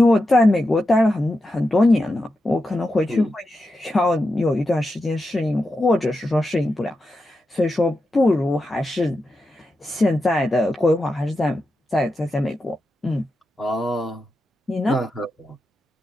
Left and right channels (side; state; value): both; normal; correlation 0.89